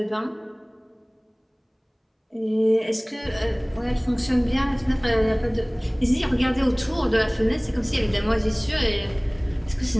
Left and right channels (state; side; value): identical; both; correlation 1.00